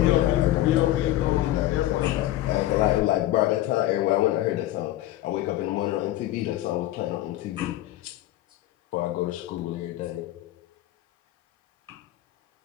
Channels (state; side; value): quieter; right; 14.9 dB